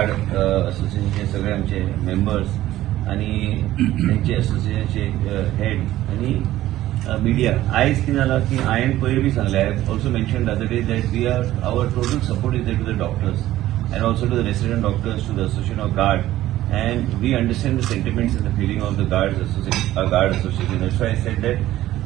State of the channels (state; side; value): quieter; left; 14.6 dB